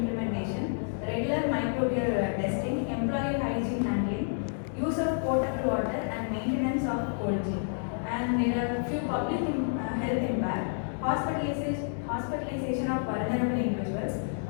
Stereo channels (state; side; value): silent; right; 58 dB below the other